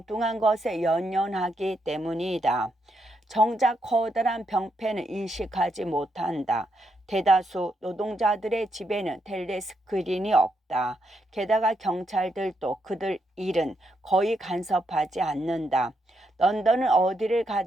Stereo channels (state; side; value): normal; both; correlation 0.79